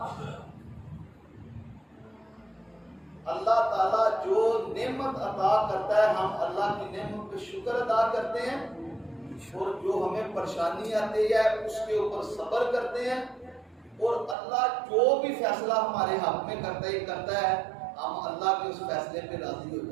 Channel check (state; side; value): drops out; left; at 14.4 s